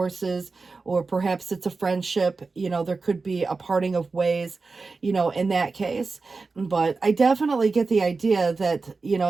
or perhaps it's a friendship, there could be a parting of ways, in that case. But I definitely get the idea that,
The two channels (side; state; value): left; quieter; 4.1 dB